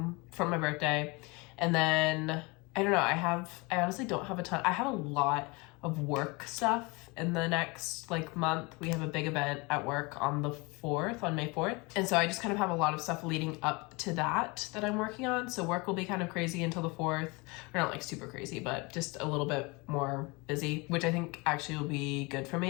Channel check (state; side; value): quieter; right; 26.8 dB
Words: for my birthday. And then, I don't know, I honestly don't have a ton. I have a lot of work stuff in the next month. We have a big event at work on the 4th, on May 4th. And so I just kind of have a lot of stuff leading up to that I'm working on. So work will be kind of crazy until the 4th. Or not super crazy, but just a little bit more busy, which I think actually will be good for